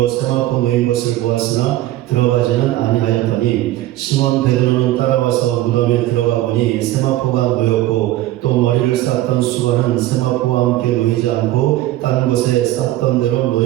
세마포 놓인 것을 보았으나 들어가지는 아니하였더니 시몬 베드로는 따라와서 무덤에 들어가 보니 세마포가 놓였고 또 머리를 쌌던 수건은 세마포와 함께 놓이지 않고 딴 곳에 쌌던 대로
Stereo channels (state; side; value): quieter; left; 15.3 dB